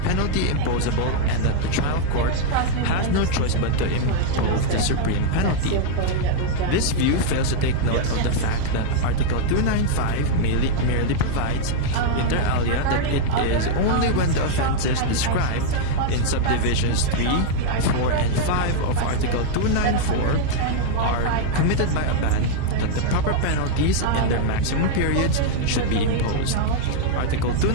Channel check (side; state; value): both; different; correlation -0.01